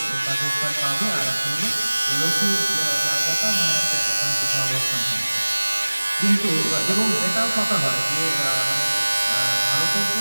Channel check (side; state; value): both; inverted; correlation -1.00